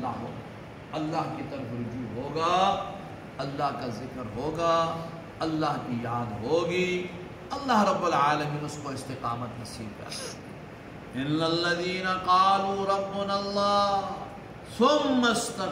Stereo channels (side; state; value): both; identical; correlation 1.00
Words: ہو، اللہ کی طرف رجوع ہوگا، اللہ کا ذکر ہوگا، اللہ کی یاد ہوگی، اللہ رب العالمین اس کو استقامت نصیب کرے۔ ان الذین قالوا ربنا اللہ ثم